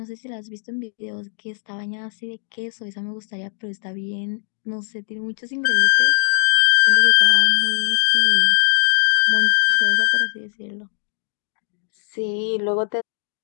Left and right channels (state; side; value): silent; right; digital silence